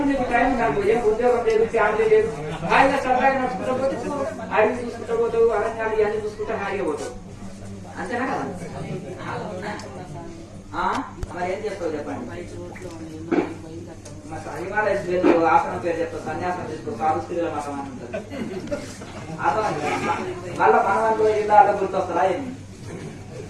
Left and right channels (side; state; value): both; identical; correlation 1.00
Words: నీకు టైం నాకు ఏం ఉద్యోగం లేదు, ఫ్యామిలీ లేదు, హాయిగా సరదాగా నడుచుకుంటూ పోతే అడవి చూసుకుంటూ పోతావు, అరణ్యాలు ఇవన్నీ చూసుకుంటే హాయిగా పోతావు అంతేనా కదా. మరి ఏం చేస్తావు చెప్పండి. హిమాలయస్ లేదు, ఆసనం పేరు చెప్తావు, సన్యాసం తీసుకో, సాధు స్త్రీల మతం అని ఉంటుంది. మళ్ళా మనవాళ్ళు జిల్లాలో గుర్తొస్తారా ఏంటి.